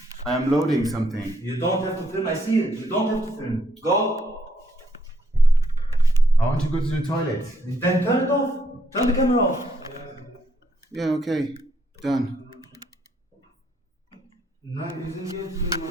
I am loading something. You don't have to film. I see it. You don't have to film. Go. I want to go to the toilet. Then turn it off. Turn the camera off. Yeah, okay. Done. Nein, wir sind jetzt nur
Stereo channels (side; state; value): both; normal; correlation 0.72